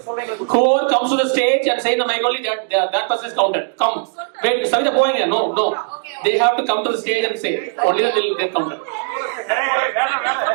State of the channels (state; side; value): silent; left; 67 dB below the other